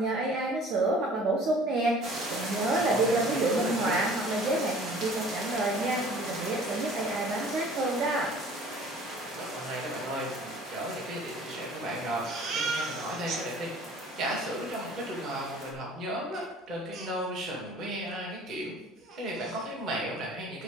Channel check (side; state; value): both; normal; correlation 0.49